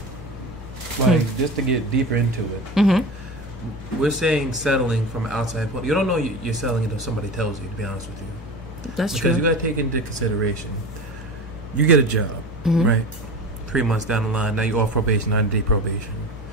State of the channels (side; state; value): both; normal; correlation 0.30